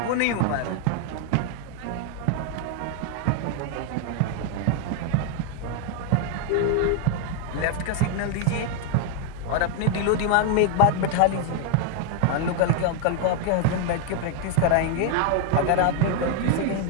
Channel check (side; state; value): both; different; correlation 0.00